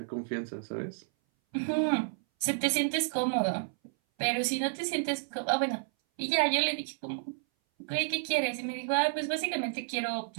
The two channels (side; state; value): left; silent; 57 dB below the other